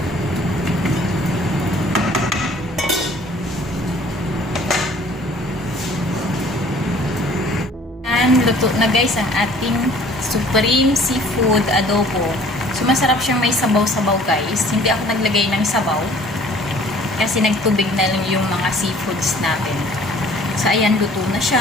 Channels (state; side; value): normal; both; correlation 0.53